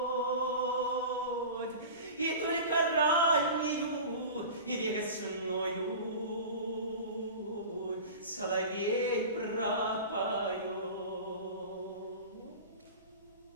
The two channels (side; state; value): both; inverted; correlation -0.33